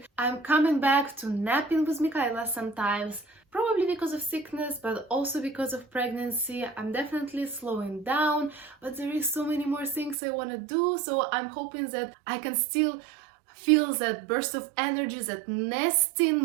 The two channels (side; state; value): left; drops out; at 10.2 s